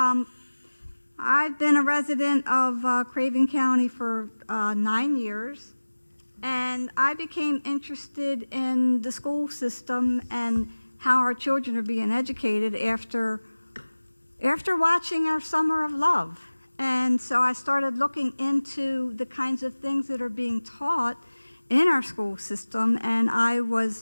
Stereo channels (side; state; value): both; inverted; correlation -1.00